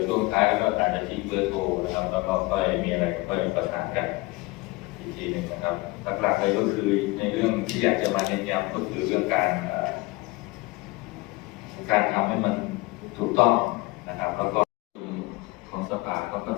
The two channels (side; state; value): right; quieter; 22.7 dB